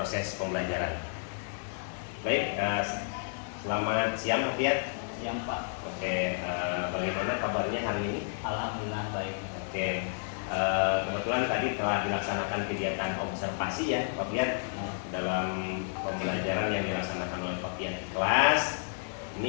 pembelajaran. Baik, selamat siang Pak Fiat. Siang Pak. Oke, bagaimana kabarnya hari ini? Alhamdulillah baik. Oke, kebetulan tadi telah dilaksanakan kegiatan observasi ya Pak Fiat dalam pembelajaran yang dilaksanakan oleh Pak Fiat di kelas.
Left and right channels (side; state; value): right; silent; 57 dB below the other